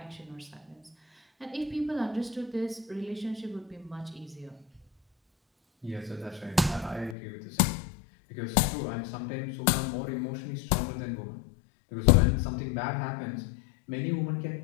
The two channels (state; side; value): drops out; right; at 7.2 s